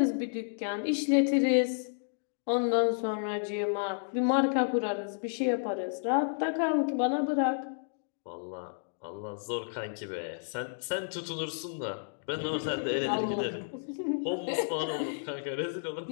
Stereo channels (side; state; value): right; silent; digital silence